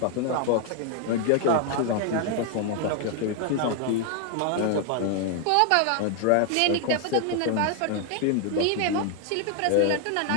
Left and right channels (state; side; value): different; both; correlation 0.00